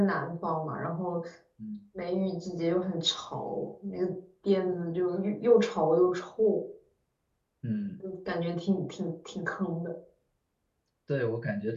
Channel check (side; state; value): both; identical; correlation 1.00